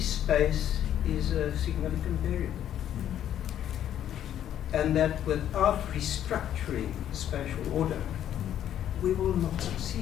is a significant variable. And that without restructuring spatial order, we will not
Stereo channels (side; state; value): right; quieter; 10.7 dB